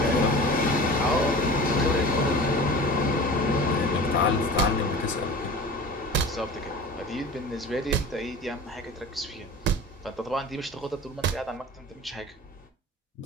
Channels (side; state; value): both; normal; correlation 0.36